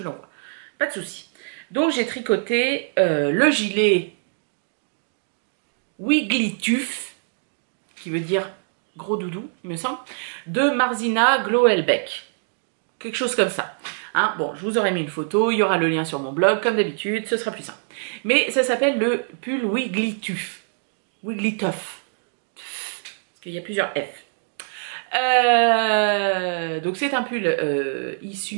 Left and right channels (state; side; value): silent; left; digital silence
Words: l'envoie. Pas de souci. Donc, j'ai tricoté le gilet Wiggly Tuf, qui veut dire gros doudou, il me semble, de Marzina Gloelbeck. Quelque chose comme ça. Hein, bon, je vous aurai mis une photo, il y aura le lien sur mon blog, comme d'habitude, ce sera plus simple. Mais ça s'appelle le pull Wiggly Tuf. Wiggly Tuff. Parce qu'il y a plusieurs F. Donc c'est un pull